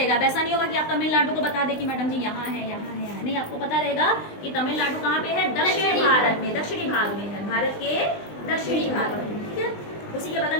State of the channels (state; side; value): late; right; 20 ms